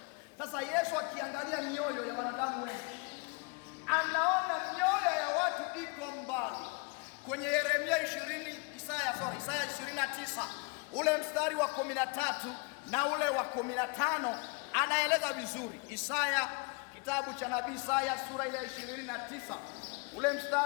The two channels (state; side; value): quieter; right; 30.7 dB